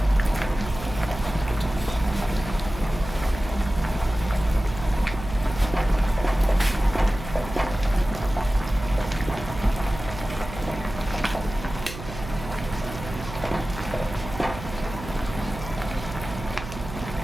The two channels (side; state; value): right; noise; hum, 11 dB below the sound